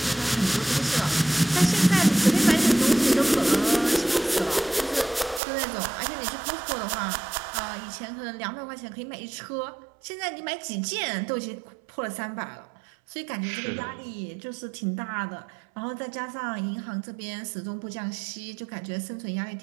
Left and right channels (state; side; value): drops out; left; at 5.4 s